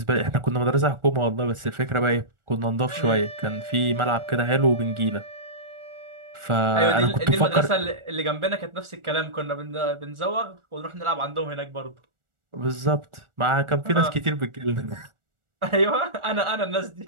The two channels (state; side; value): late; left; 1.4 ms